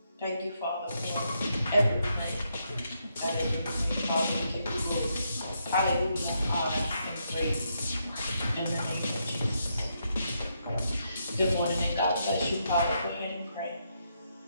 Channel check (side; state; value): both; inverted; correlation -0.79